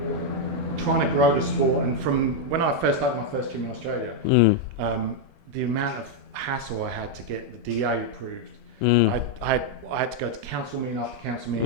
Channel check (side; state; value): left; late; 8.3 ms